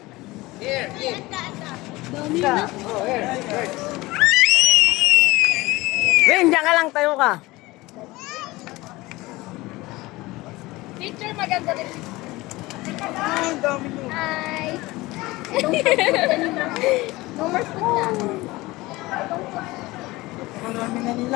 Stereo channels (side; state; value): right; quieter; 20.5 dB